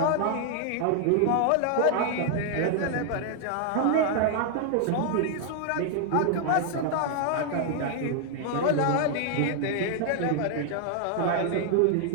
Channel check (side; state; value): both; different; correlation 0.00